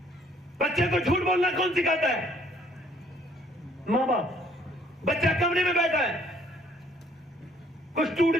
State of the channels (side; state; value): both; normal; correlation 0.62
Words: بچے کو جھوٹ بولنا کون سکھاتا ہے؟ ماں باپ۔ بچہ کمرے میں بیٹھا ہے، کچھ ٹوٹ